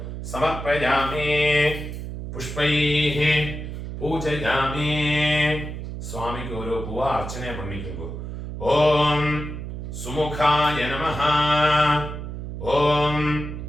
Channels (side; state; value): right; noise; hum, 7 dB below the sound